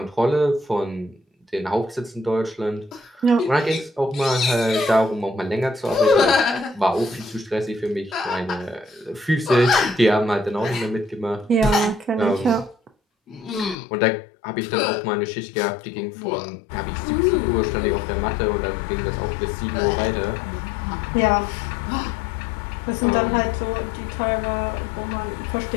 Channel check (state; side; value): drops out; right; at 13.8 s